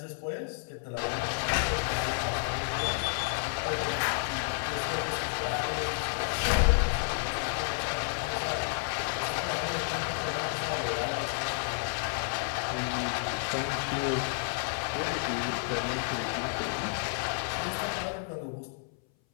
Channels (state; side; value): silent; right; 57 dB below the other